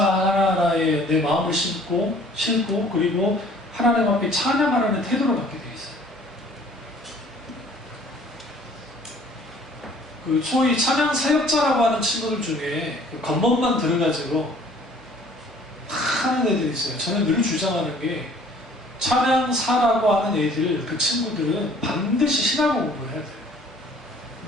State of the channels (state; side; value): noise; right; hum, 28 dB below the sound